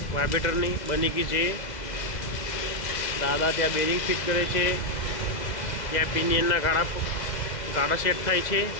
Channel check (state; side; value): late; right; 2.0 ms